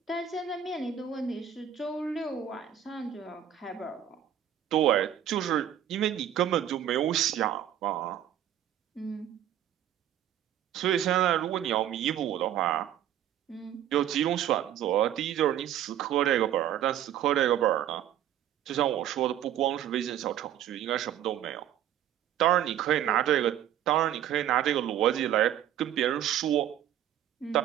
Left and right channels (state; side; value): quieter; left; 10.7 dB